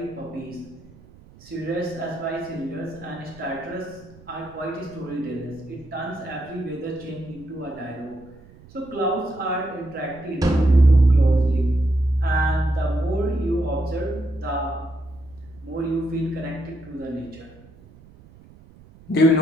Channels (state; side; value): noise; right; rumble, 23 dB below the sound